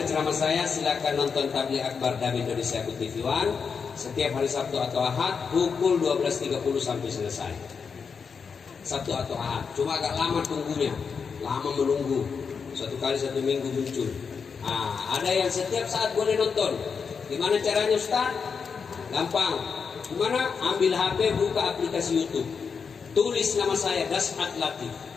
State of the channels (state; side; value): quieter; right; 5.8 dB